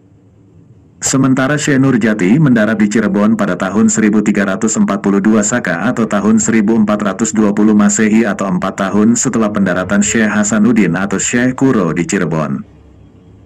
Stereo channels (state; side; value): identical; both; correlation 1.00